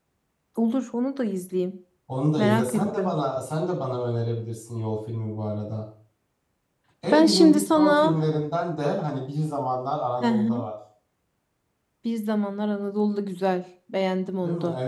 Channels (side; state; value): both; identical; correlation 1.00